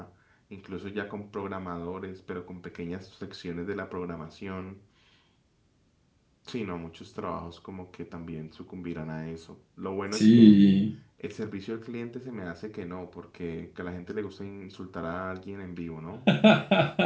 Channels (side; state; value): both; identical; correlation 1.00